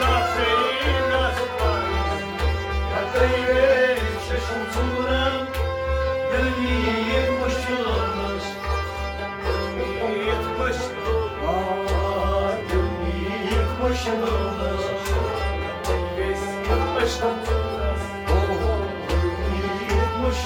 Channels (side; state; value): both; identical; correlation 1.00